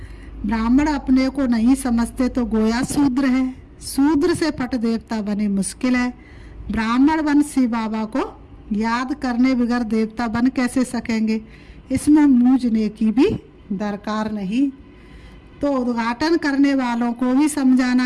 ब्राह्मण अपने को नहीं समझते तो गोया शूद्र है, शूद्र से पट देवता बने मुश्किल है। ब्राह्मण बन शिव बाबा को याद करने बगैर देवता बन कैसे सकेंगे, इसमें मूझने की भी दरकार नहीं। तो उद्घाटन करने वालों को भी समझाना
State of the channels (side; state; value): both; identical; correlation 1.00